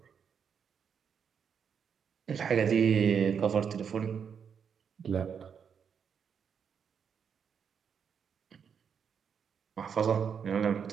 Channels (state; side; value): quieter; left; 7.1 dB